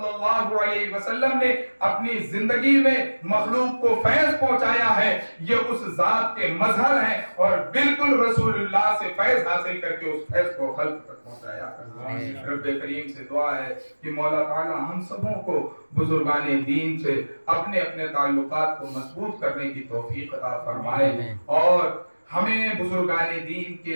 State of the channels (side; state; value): both; inverted; correlation -1.00